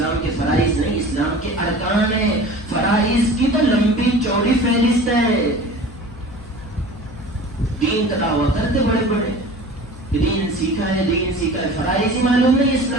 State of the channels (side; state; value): left; noise; hum, 17 dB below the sound